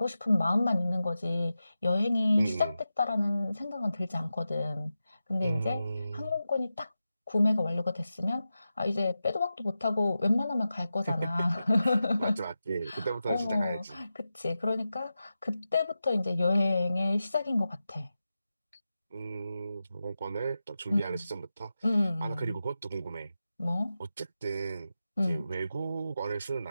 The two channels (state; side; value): inverted; both; correlation -0.92